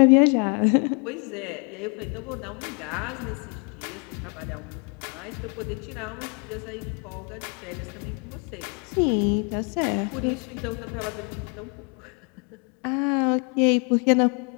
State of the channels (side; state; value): right; quieter; 36.2 dB